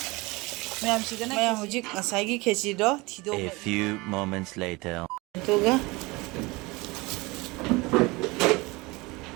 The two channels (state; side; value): quieter; left; 23.6 dB